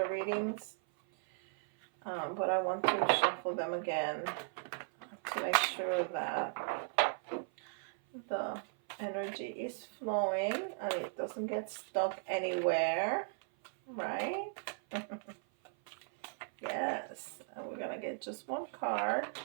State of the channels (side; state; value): left; silent; 53 dB below the other